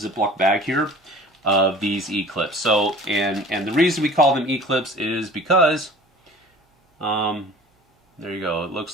bag here of these E-clips. So, and the reason we call them E-clips is because, there you go. It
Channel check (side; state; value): both; normal; correlation 0.44